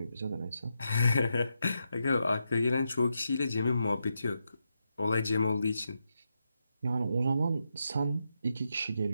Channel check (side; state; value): both; inverted; correlation -0.85